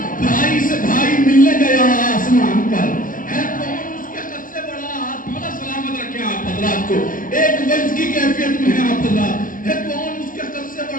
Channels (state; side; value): late; right; 0.39 ms